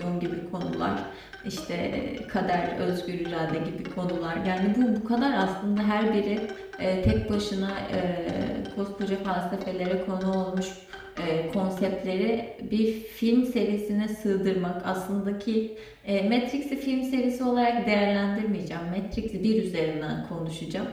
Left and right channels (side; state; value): both; identical; correlation 1.00